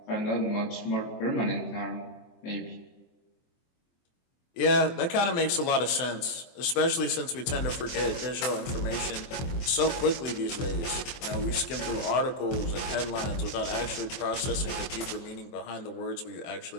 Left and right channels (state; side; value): late; right; 23 ms